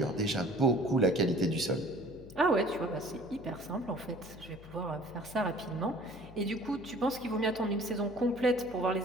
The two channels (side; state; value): left; noise; hum, 19 dB below the sound